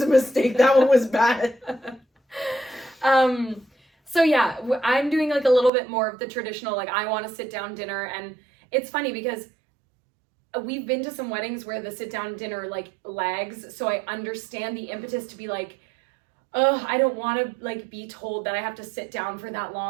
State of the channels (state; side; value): drops out; left; at 5.7 s